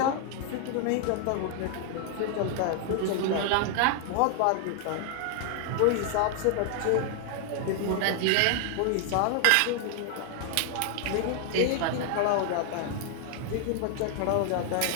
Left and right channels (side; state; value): both; different; correlation 0.00